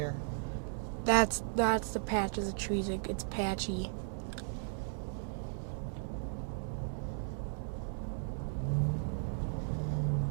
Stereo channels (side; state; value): left; silent; digital silence